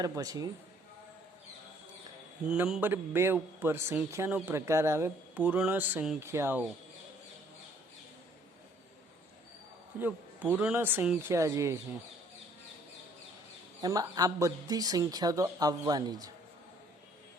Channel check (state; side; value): normal; both; correlation 0.61